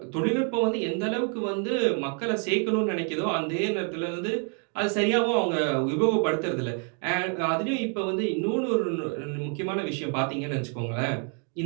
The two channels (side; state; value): left; quieter; 38.0 dB